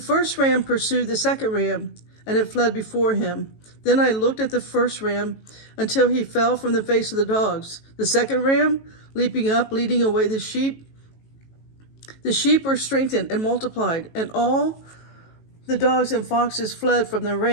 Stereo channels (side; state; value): right; late; 18 ms